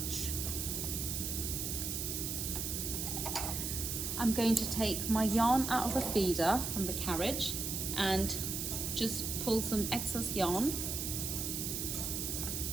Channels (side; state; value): right; noise; hiss, 2 dB below the sound